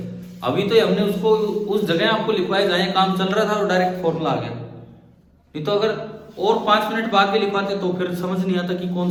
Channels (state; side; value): identical; both; correlation 1.00